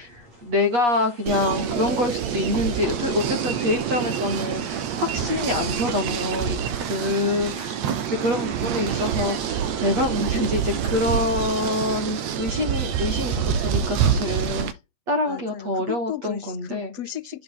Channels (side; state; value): left; late; 8.7 ms